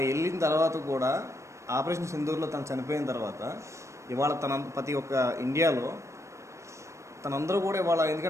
వెళ్ళిన తర్వాత కూడా ఆపరేషన్ సింధూర్లో తను చనిపోయిన తర్వాత ఇవాళ ప్రతి ఒక్క ఇండియాలో తనందరూ కూడా ఇవాళ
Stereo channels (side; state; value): left; late; 0.14 ms